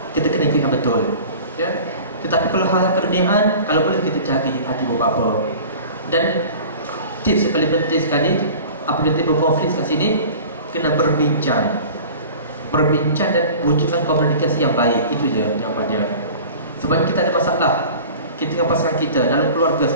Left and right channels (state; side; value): inverted; both; correlation -0.41